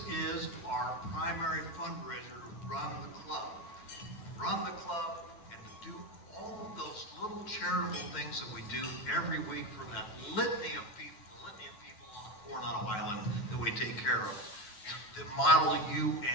is our primary fundraiser to run the club. Run the club and to do all of those little charitable things that we do every week for that litany of people on Coronado Island that we take care of. The Model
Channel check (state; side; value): late; right; 10 ms